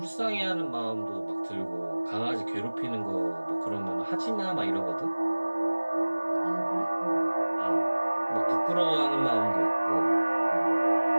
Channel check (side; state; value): both; inverted; correlation -1.00